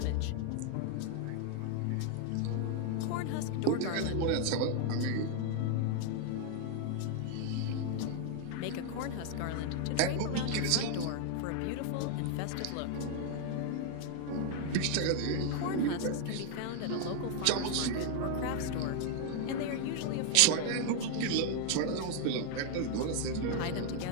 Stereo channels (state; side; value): different; both; correlation 0.00